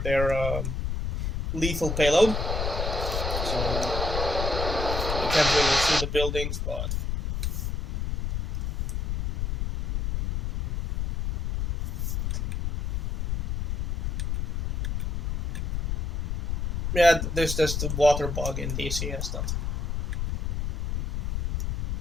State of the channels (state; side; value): noise; left; rumble, 2 dB below the sound